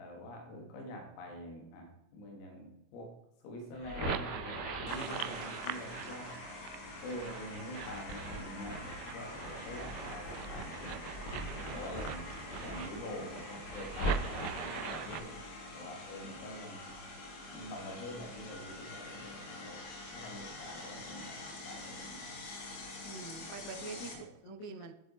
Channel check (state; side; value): late; right; 25 ms